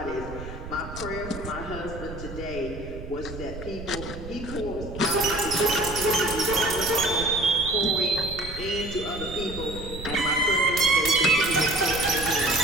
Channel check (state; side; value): noise; right; rumble, 11 dB below the sound